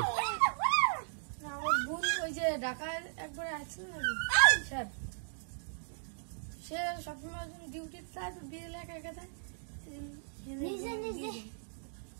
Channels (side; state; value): left; silent; digital silence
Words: আমার বোন ওই যে ঢাকায় একবার আসছিল না স্যার সে সবসময় ডিউটি যায় তো বিড়াল একা একা যায় নিজে নিজে